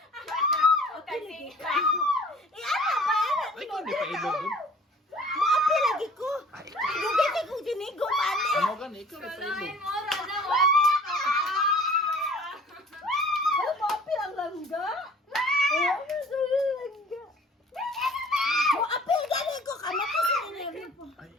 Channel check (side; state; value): both; normal; correlation 0.49